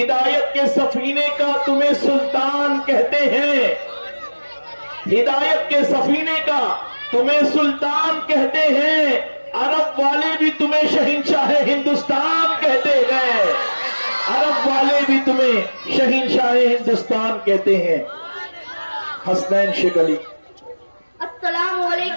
के सफीने का तुम्हें सुल्तान कहते हैं, हिदायत के सफीने का तुम्हें सुल्तान कहते हैं। अरब वाले भी तुम्हें शहंशाह हिंदुस्तान कहते हैं, अरब वाले भी तुम्हें शहंशाह हिंदुस्तान कहते हैं। हसनैन शेख अली। अस्सलाम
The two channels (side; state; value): both; inverted; correlation -1.00